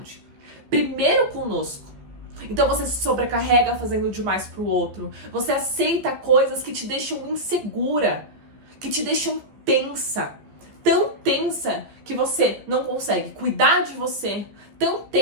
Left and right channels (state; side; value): late; left; 15 ms